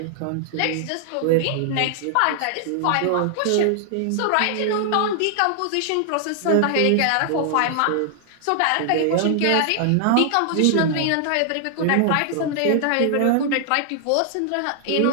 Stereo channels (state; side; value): different; both; correlation 0.00